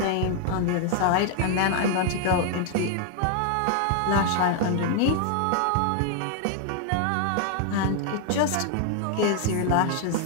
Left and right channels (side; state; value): both; different; correlation 0.00